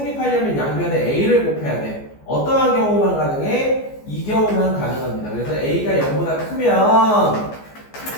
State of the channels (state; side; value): late; right; 14 ms